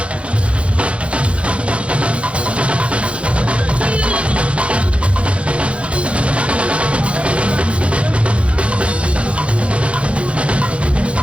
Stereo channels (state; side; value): late; left; 0.061 ms